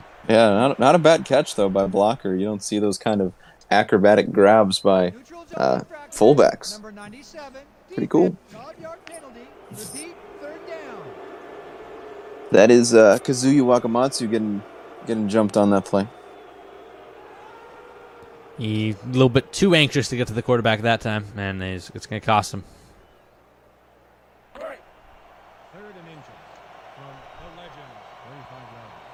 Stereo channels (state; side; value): identical; both; correlation 1.00